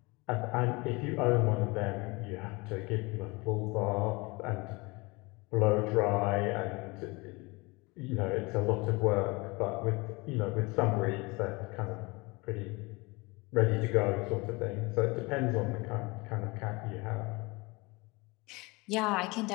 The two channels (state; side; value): quieter; right; 25.7 dB